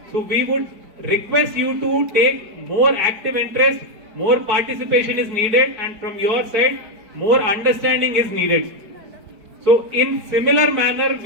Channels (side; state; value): left; late; 4.6 ms